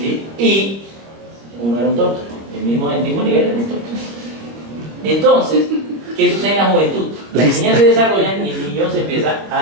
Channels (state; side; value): late; left; 25 ms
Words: Y uno era un tonto, el mismo nivel era un tonto. Entonces, ¿qué sucede en la juventud? Las niñas se desarrollan y el niño se empieza